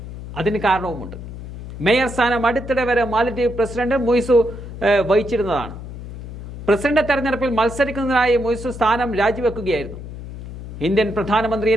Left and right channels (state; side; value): noise; left; hum, 11 dB below the sound